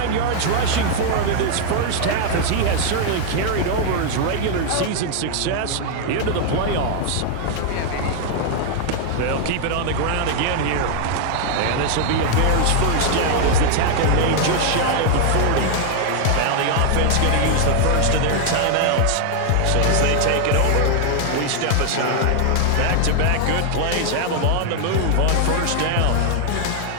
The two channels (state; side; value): different; both; correlation 0.00